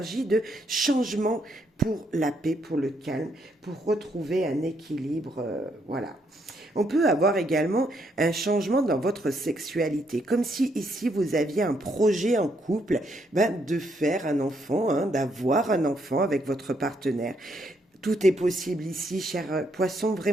de changement pour la paix, pour le calme, pour retrouver un équilibre, voilà. On peut avoir également un changement dans votre sexualité, comme si ici vous aviez un projet en couple de faire un enfant, d'avoir un enfant avec votre partenaire. Tout est possible ici, cher poisson.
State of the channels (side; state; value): both; normal; correlation 0.74